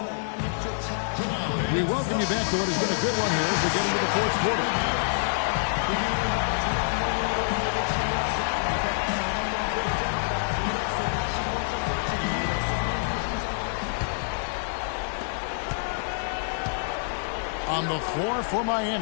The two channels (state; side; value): silent; right; digital silence